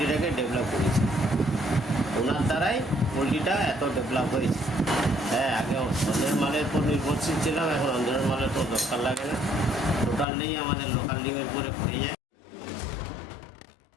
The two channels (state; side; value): drops out; right; at 10.2 s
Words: ডেভেলপ করেছেন। ওনার দ্বারাই পোলট্রিটা এত ডেভেলপ হয়েছে। হ্যাঁ, আগে অন্যের মালের উপর নির্ভরশীল ছিলাম, এখন অন্যের মালের তো দরকার লাগে না, টোটাল নেই, আমাদের লোকাল ডিমের উপরে হয়ে যায়।